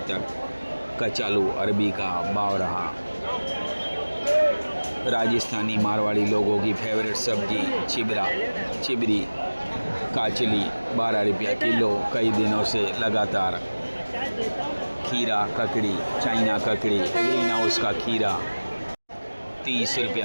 तक कचालू अरबी का भाव रहा। राजस्थानी मारवाड़ी लोगों की फेवरेट सब्जी चिबरी काचली 12 रुपया किलो कई दिनों से लगातार। खीरा ककड़ी, चाइना ककड़ी, ग्रीन हाउस का खीरा 30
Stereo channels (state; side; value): inverted; both; correlation -1.00